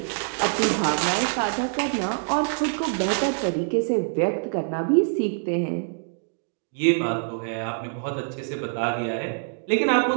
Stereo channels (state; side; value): silent; left; digital silence